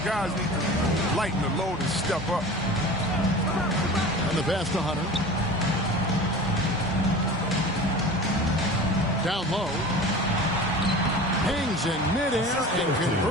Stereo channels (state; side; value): normal; both; correlation 0.36